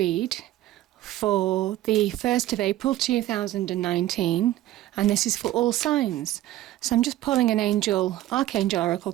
for the 1st of April 2019 and this is for all signs. So I'm just pulling an Archangel Oracle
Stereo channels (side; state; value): left; quieter; 14.5 dB